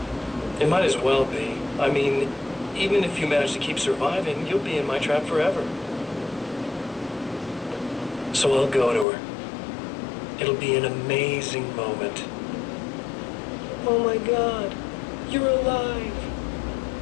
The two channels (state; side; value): drops out; right; at 9.1 s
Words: It might as well be. I mean, even if you manage to keep surviving, you'll be in my trap forever. So I'll go to her. It'll be an amazing moment. Oh my God, you're alive.